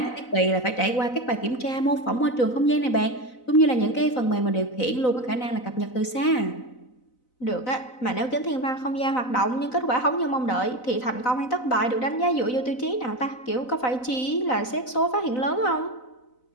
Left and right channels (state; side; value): late; right; 4.0 ms